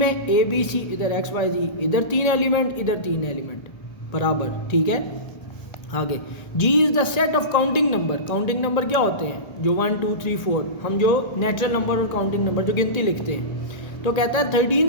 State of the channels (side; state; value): right; late; 1.8 ms